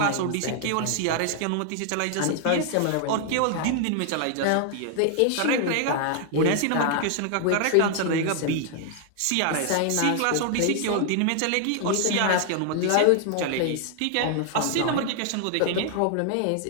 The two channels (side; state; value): both; different; correlation 0.00